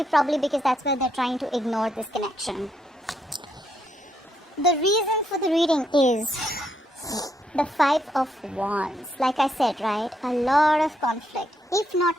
probably because that's where they're trying to ignore this connection. The reason for the reading is the Five of Wands. Like I said, right, a lot of conflict. If not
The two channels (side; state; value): both; normal; correlation 0.76